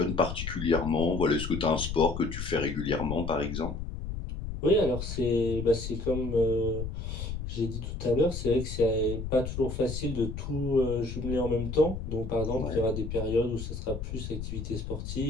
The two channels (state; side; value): noise; left; rumble, 6 dB below the sound